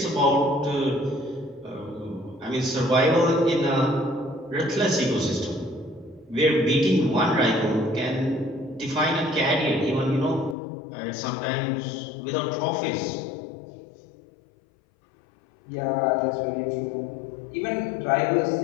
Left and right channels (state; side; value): drops out; right; at 10.6 s